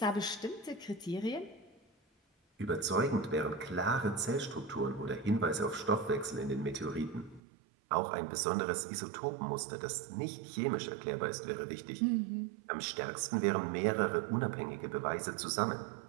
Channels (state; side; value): drops out; left; at 7.4 s